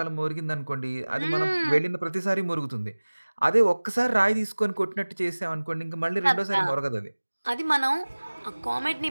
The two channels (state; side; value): inverted; both; correlation -1.00